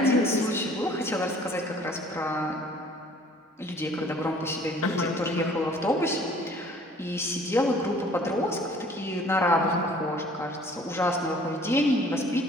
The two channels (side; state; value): both; normal; correlation 0.53